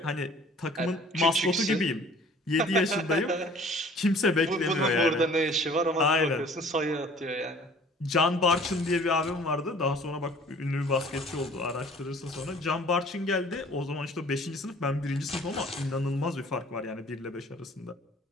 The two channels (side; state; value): both; normal; correlation 0.51